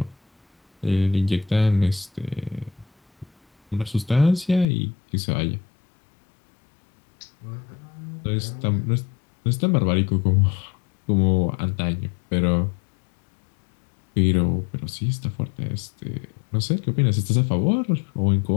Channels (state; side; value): drops out; right; at 4.7 s